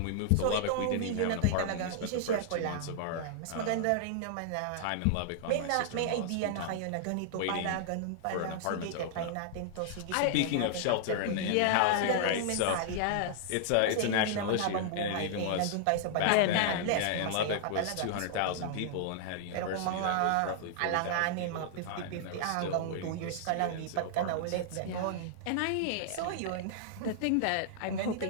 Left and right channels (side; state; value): both; different; correlation -0.01